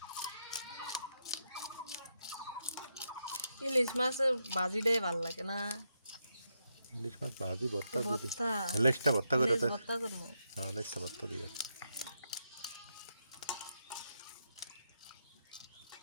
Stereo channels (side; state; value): both; inverted; correlation -0.83